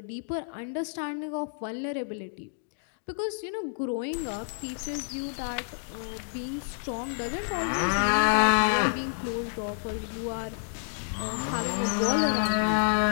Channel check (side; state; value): right; silent; digital silence